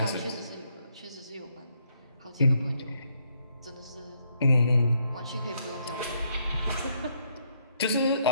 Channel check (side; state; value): both; inverted; correlation -0.74